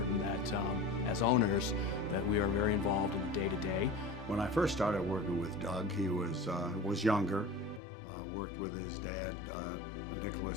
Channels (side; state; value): right; drops out; at 7.8 s